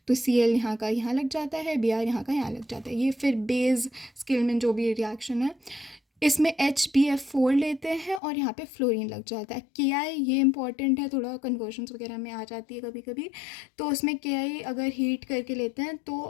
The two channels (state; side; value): drops out; right; at 8.2 s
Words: तो Cl यहाँ का यहाँ लग जाता है, Br यहाँ का यहाँ लग जाता है। ये फिर बेस किल्मैन जो भी रिएक्शन है, इसमें HbF4 लेते हैं और यहाँ पे फ्लोरीन लग जाता है। Ki ये इंपॉर्टेंट है, थोड़ा कन्वर्जन्स वगैरह में आ जाती है कभी कभी, तो उसमें Ki अगर हीट करके लेते हैं